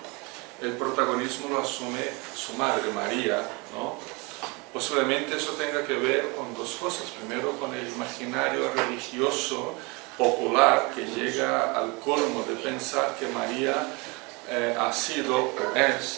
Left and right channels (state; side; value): quieter; left; 27.8 dB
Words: el protagonismo lo asume su madre, María, ¿no? Posiblemente eso tenga que ver con dos cosas. Primero, con el imaginario religioso popular que llega al colmo de pensar que María ha sido o